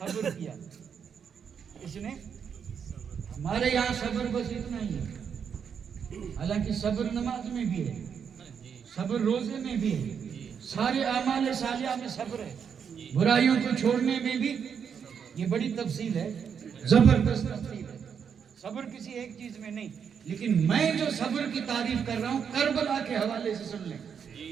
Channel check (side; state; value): left; quieter; 7.2 dB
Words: کیا. اس نے ہمارے یہاں صبر بس اتنا ہی ہے. حالانکہ صبر نماز میں بھی ہے, صبر روزے میں بھی ہے, سارے اعمال صالحہ میں صبر ہے, برائیوں کو چھوڑنے میں بھی. یہ بڑی تفصیل ہے, زبردست تفصیل ہے. صبر کسی ایک چیز میں نہیں, لیکن میں جو صبر کی تعریف کر رہا ہوں کربلا کے حوالے سے سن لیں.